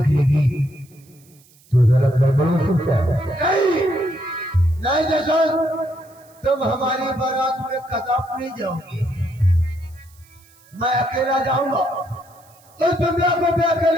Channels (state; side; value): noise; right; hiss, 29 dB below the sound